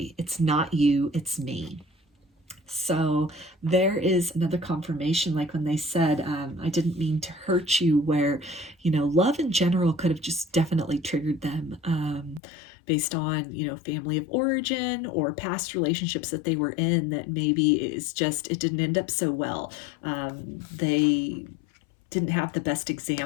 It's not you, it's me. So there is another confirmation, like when they said, I didn't mean to hurt you, where, love in general could have just definitely triggered them. based on, you know, family of origin or past relationships that they were in that maybe it didn't end up so well. They didn't have the best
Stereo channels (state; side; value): drops out; right; at 12.4 s